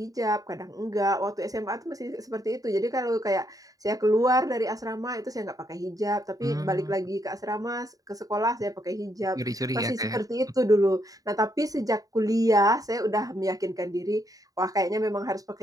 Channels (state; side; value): late; left; 0.17 ms